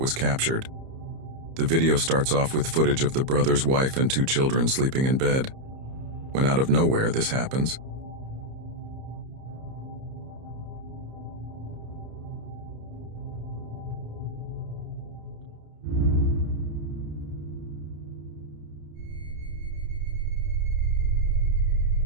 was captured. The video starts off with footage of the brother's wife and 2 children sleeping in bed. When out of nowhere this happens,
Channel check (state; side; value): late; left; 30 ms